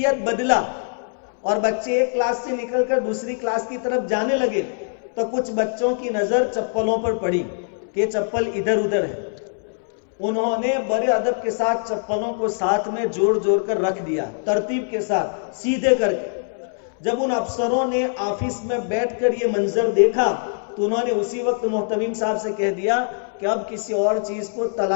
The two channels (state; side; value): silent; right; 64 dB below the other